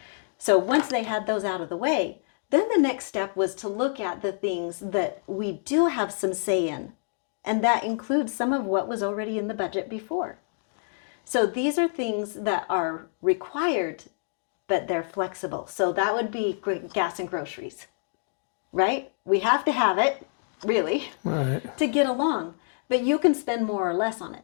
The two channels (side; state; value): right; silent; digital silence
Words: So once they had those out of the way, then the next step was to look at the things that we do have some say in. And that includes some of what was already in the budget before. So these are things that are required, but they're flexible. So that would be gas and groceries, right? We have to have it, really, to get along. But you can spend more or less on